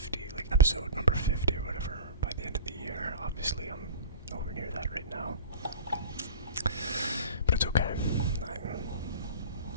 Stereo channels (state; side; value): inverted; both; correlation -0.34